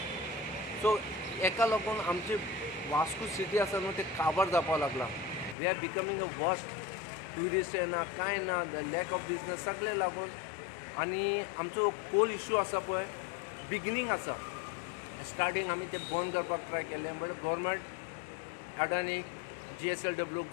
सो एका लागून आमची वास्को सिटी आसा न्हू ते काबार जावपाक लागला. We are becoming a worst. Tourist येना कांय ना, लॅक ऑफ बिजनस सगळे लागून. आनी आमचो कोल इश्यू आसा पळय बिगिनींग आसा, स्टार्टींग आमी ते बंद करपाक ट्राय केलें but government Adani GSLW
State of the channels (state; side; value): drops out; right; at 5.6 s